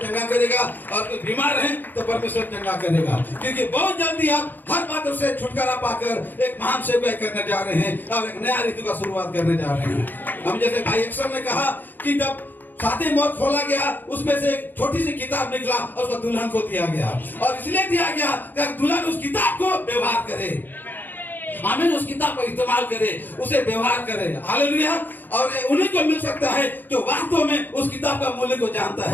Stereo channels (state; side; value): late; right; 0.089 ms